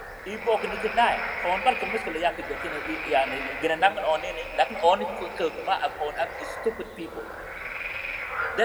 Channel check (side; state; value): both; identical; correlation 1.00